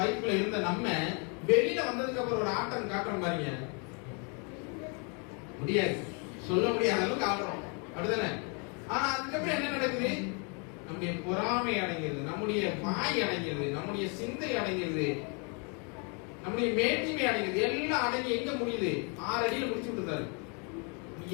இருந்த நம்ம வெளியில வந்ததுக்கு அப்புறம் ஒரு ஆட்டம் காட்டுறோம் பாருங்க, முடியாது, சொல்ல முடியாத அளவுக்கு ஆடுறோம் அப்படிதானே? ஆனா அதுக்கப்புறம் என்ன நடக்குது? நம்முடைய பொறாமை அடங்கிறது, நம்முடைய வாய் அடங்கிறது, நம்முடைய சிந்தை அடங்கிறது, நம்முடைய மேட்டிமை அடங்கிறது, எல்லாம் அடங்கி எங்க முடியுது? 6 அடியில முடிச்சு விட்டுருந்தாரு.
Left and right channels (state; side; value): quieter; right; 35.6 dB